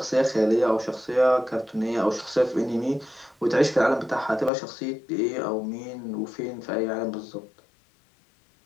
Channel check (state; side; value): drops out; right; at 4.5 s